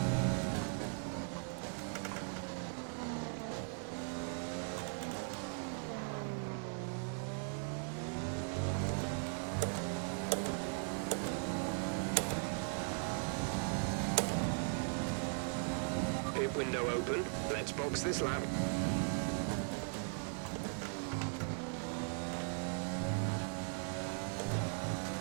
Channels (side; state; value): left; silent; 52 dB below the other